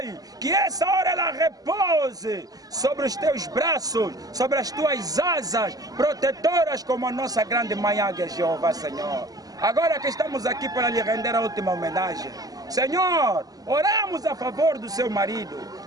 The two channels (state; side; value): late; left; 0.18 ms